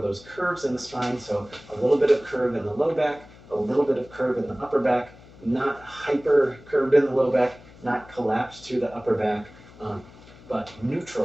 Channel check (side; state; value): left; noise; hum, 22 dB below the sound